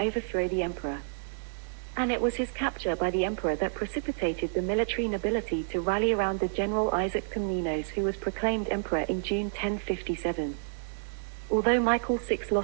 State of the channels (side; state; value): left; silent; digital silence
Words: the emperor. And it was his capture by the emperor that precipitated the military nobility to rally around the general Isaac Komnenos, who was proclaimed emperor in June 1057. Although Michael VI